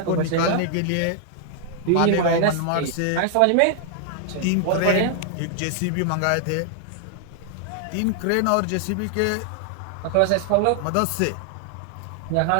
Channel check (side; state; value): both; different; correlation 0.00